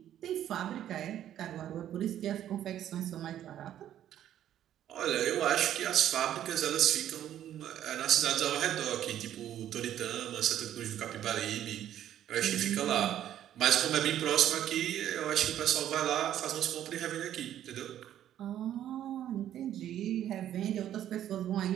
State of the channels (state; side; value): quieter; left; 11.3 dB